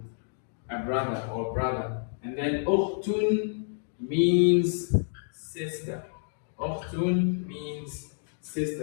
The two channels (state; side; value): silent; right; digital silence